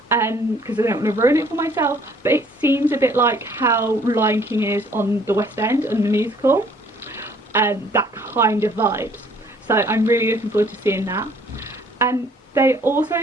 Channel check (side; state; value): both; normal; correlation 0.59